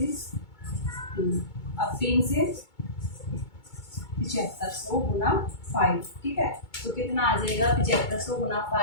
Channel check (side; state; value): right; late; 2.2 ms